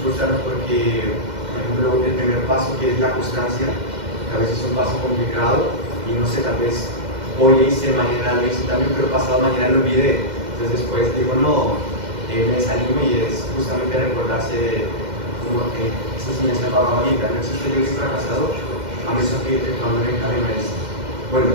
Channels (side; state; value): left; late; 2.1 ms